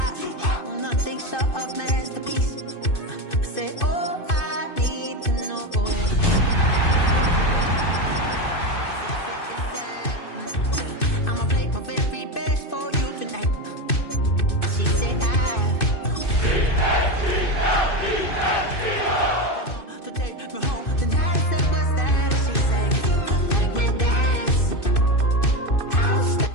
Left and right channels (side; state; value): right; late; 2.6 ms